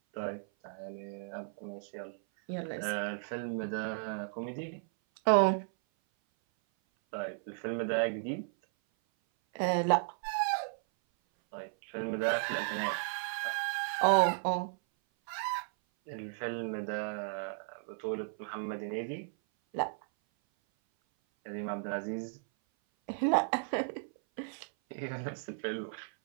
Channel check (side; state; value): left; silent; 55 dB below the other